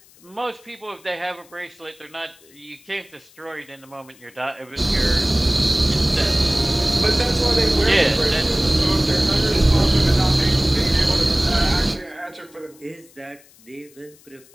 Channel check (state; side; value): noise; left; hiss, 27 dB below the sound